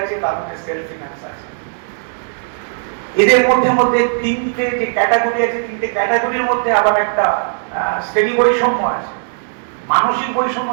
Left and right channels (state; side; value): silent; left; digital silence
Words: আছে, তার মধ্যে সেলফ ফিনান্স আছে। এদের মধ্যে তিনটে যে ক্যাটাগরি আছে, তিনটে ক্যাটাগরির মধ্যে আবার একটা শ্রেণী বৈষম্য আছে। মানসিক বৈষম্য